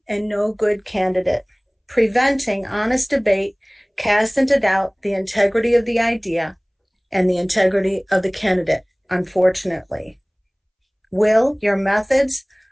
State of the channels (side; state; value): both; identical; correlation 1.00